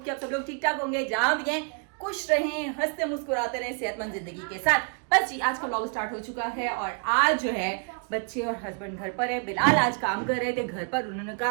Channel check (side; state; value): left; quieter; 38.1 dB